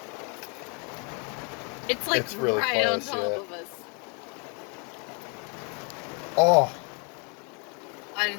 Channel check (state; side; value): quieter; right; 35.6 dB